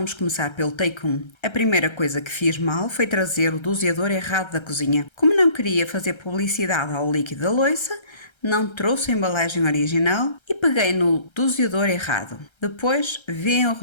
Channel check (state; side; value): late; right; 1.3 ms